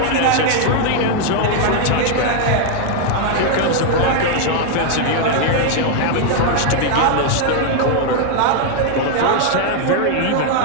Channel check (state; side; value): different; both; correlation 0.00